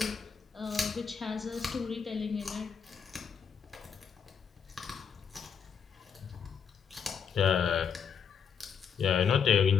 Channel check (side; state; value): right; quieter; 6.8 dB